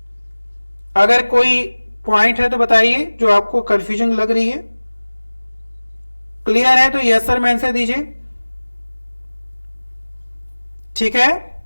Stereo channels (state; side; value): inverted; both; correlation -1.00